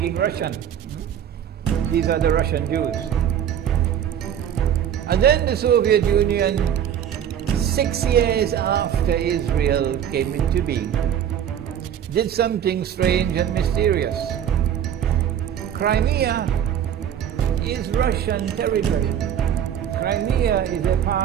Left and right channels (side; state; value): left; quieter; 9.5 dB